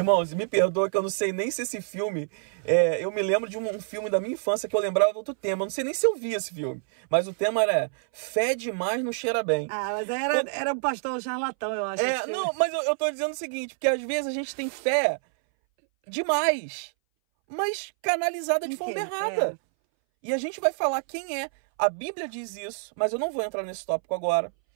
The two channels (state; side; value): silent; left; 60 dB below the other